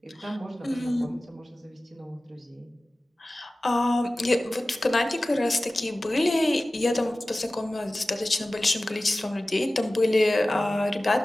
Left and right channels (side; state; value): both; normal; correlation 0.97